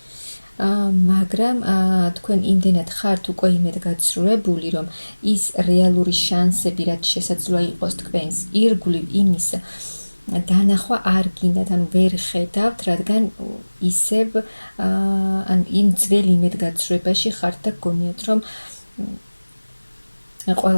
მაგრამ თქვენ იმდენად ხართ უკვე იმედგაცრუებული, რომ ის რეალური შანსები, რაც შესაძლოა იყოს თქვენს ირგვლივ, იმის დანახვა არ გინდათ, ანუ ვერ ხედავთ, რადგან ისევ იმ ძველ იმედგაცრუებაში ხართ და გგონიათ, რომ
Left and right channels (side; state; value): both; inverted; correlation -1.00